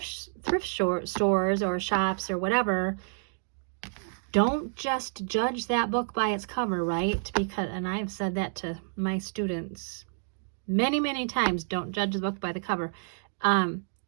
stores or shops or whatever, don't just judge that book by its cover, right? Because, and I've said that to my students many, many times, don't judge the book by the cover,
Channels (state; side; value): silent; left; digital silence